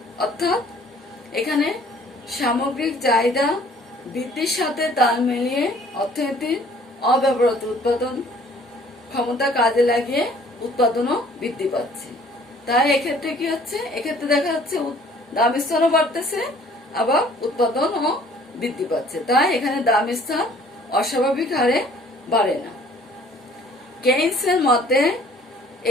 অর্থাৎ এখানে সামগ্রিক চাহিদা বৃদ্ধির সাথে তাল মিলিয়ে অর্থনীতির অব্যবহৃত উৎপাদন ক্ষমতা কাজে লাগিয়ে উৎপাদনও বৃদ্ধি পাচ্ছে। তাই এক্ষেত্রে কি হচ্ছে, এক্ষেত্রে দেখা যাচ্ছে দাম স্তরও বাড়তেছে আবার উৎপাদনও বৃদ্ধি পাচ্ছে। তাই এখানে দাম স্তর অস্বাভাবিক হারে বাড়ে না। কেইন্সের মতে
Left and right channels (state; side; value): normal; both; correlation 0.55